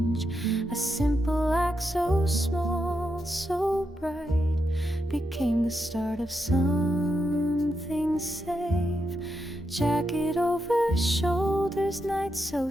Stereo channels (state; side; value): normal; both; correlation 0.84